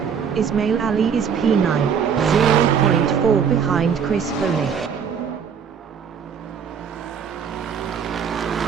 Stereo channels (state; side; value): quieter; left; 7.1 dB